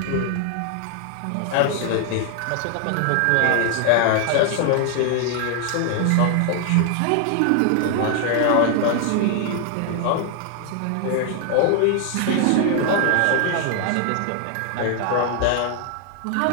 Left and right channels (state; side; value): different; both; correlation 0.00